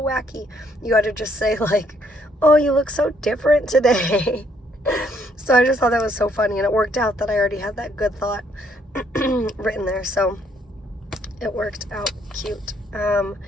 wacky. You had to just say like, oh, you look so different today. So I just thought that was so funny, and it worked out that I already had that good thought written there, so it worked out cute.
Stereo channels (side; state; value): both; normal; correlation 0.69